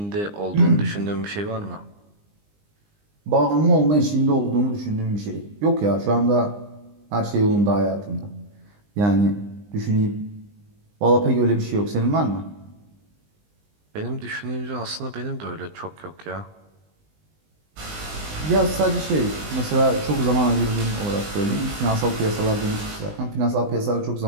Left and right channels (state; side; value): late; left; 20 ms